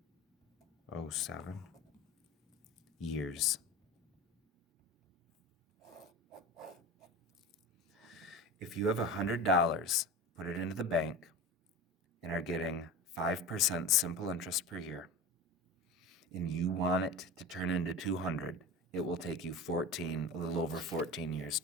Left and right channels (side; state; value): both; normal; correlation 0.31